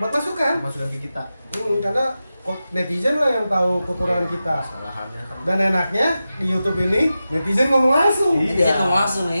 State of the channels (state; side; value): inverted; both; correlation -0.92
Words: masukan. Masukan ke kita. Karena netizen lah yang tahu kekurangan kita. Kesalahannya kan. Dan enaknya di YouTube ini netizen ngomong langsung. Iya. Netizen ngomong langsung